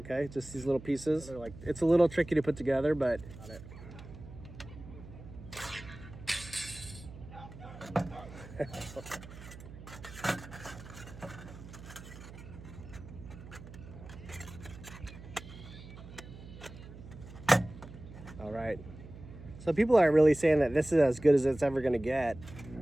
just these little pieces. They're like, it's a little tricky to put together, but got it. All right, so people are really saying that this is as good as it's ever going to get.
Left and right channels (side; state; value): right; noise; hum, 15 dB below the sound